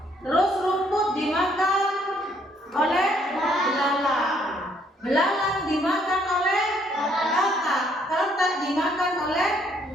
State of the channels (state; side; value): normal; both; correlation 0.67